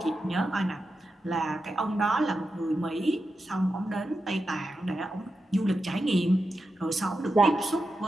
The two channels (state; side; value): normal; both; correlation 0.89